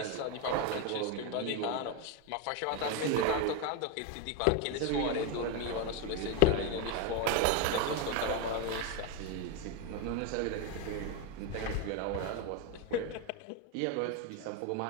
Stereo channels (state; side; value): different; both; correlation 0.02